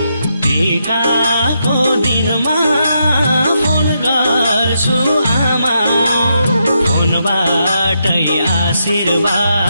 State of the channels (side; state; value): both; inverted; correlation -0.81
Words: टिकाको दिनमा फोन गर्छु आमा फोनबाटै